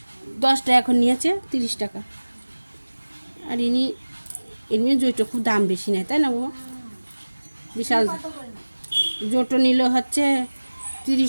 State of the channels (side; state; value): both; inverted; correlation -1.00